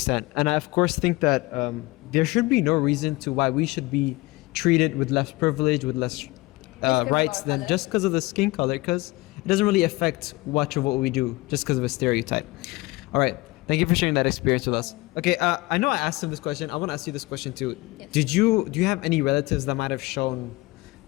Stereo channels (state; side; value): quieter; right; 21.9 dB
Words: And I, of course, think that there should be no reason to why we should be treated with less privilege, with less 'cause of rights our than color? just because of the skin color, because it doesn't really affect much of what we do just because of a stereotype. All right. Thank you for sharing that experience with us. Okay, I know I asked him this question. I want to ask you this question too. Yes. Do you have any relatives that might have shown